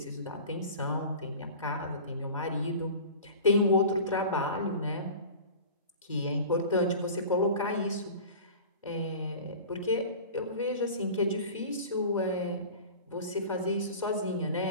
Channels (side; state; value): both; inverted; correlation -0.38